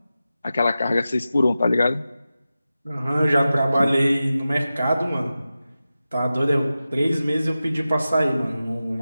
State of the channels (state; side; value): inverted; both; correlation -0.93